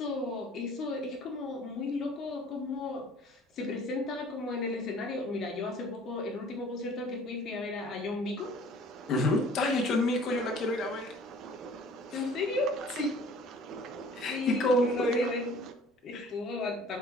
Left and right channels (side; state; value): both; normal; correlation 0.50